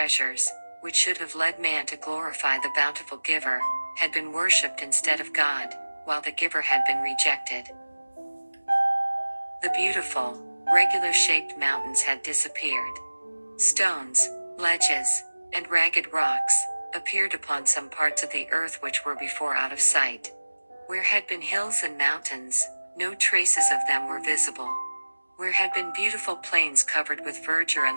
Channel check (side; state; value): both; inverted; correlation -1.00